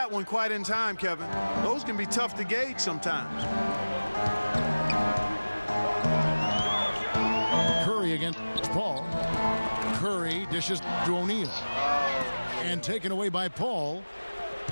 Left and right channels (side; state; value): both; inverted; correlation -1.00